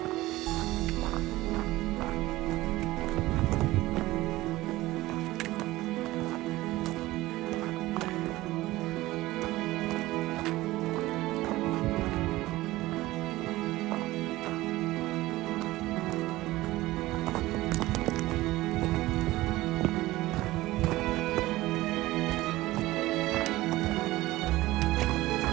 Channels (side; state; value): left; quieter; 17.8 dB